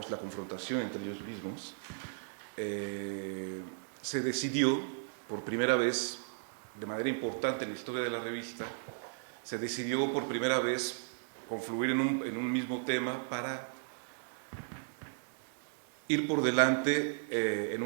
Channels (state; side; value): silent; left; digital silence